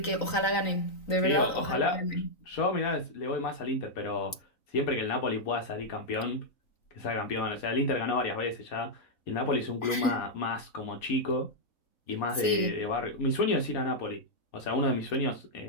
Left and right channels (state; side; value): late; right; 3.9 ms